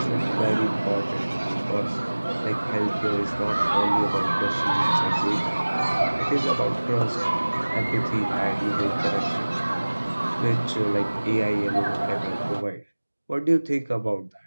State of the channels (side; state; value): both; inverted; correlation -1.00